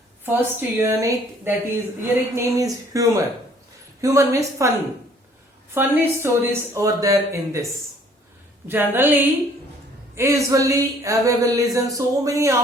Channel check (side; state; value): both; normal; correlation 0.58